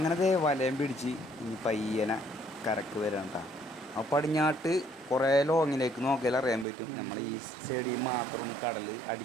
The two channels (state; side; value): drops out; left; at 6.7 s